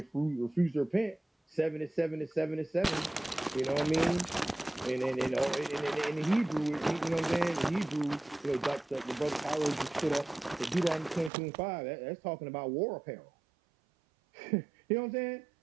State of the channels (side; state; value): left; drops out; at 11.3 s